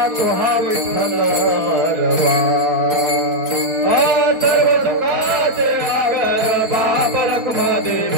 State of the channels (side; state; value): left; late; 4.3 ms